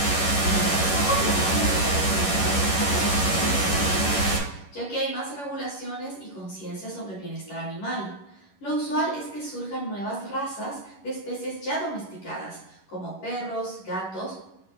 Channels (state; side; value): late; right; 11 ms